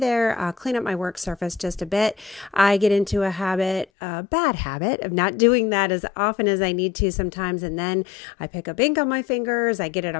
clean up my work surface just a bit. I get into a bad habit of not doing that as often as I need to sometimes, and then I pick up ink on my fingers, I get it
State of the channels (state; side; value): drops out; right; at 3.9 s